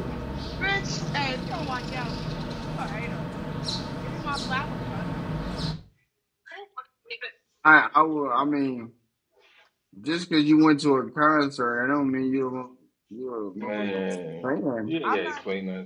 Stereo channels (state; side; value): identical; both; correlation 1.00